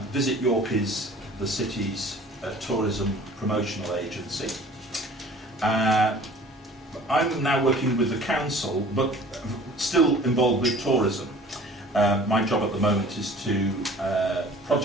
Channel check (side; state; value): both; normal; correlation 0.48